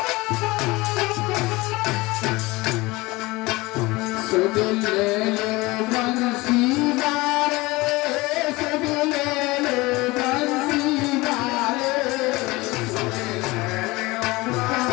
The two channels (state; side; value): quieter; right; 21.9 dB